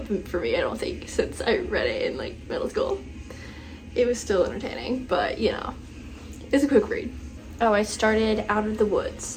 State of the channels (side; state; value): both; identical; correlation 1.00